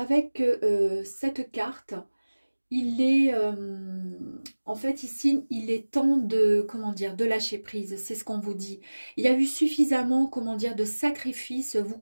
cette carte, il est en fait ici, il est temps de, comment dire, de lâcher prise, c'est ce qu'on vous dit. Il y a eu suffisamment, comment dire, de sacrifices vous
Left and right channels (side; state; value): both; inverted; correlation -1.00